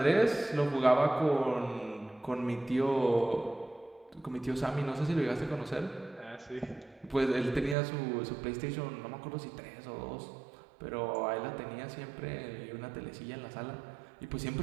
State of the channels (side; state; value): left; drops out; at 7.8 s